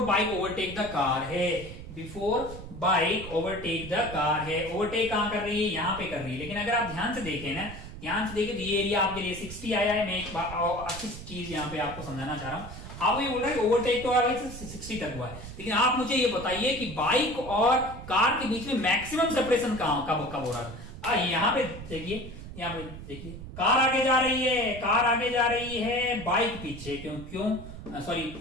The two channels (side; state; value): right; noise; rumble, 12 dB below the sound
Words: bike overtake the car है। Before bike overtake the car है। ओवरटेक कहां कर रही है? यहां पे कर रही है। लेकिन अगर आप ध्यान से देखें ना, तो ये एरिया आपके लिए 60 आया है। मैं एक अच्छी चीज यहाँ पे आपको समझाना चाह रहा हूं। आप ये बोल रहे हैं ओवरटेक तो भाई 60 तक हुआ है, लेकिन आप मुझे ये बताइए कि बाइक और कार के बीच में मैक्सिमम सेपरेशन कब हो रहा है? यहाँ पे देखिए, कार आगे जा रही है, बाइक पीछे। क्यों? सॉरी,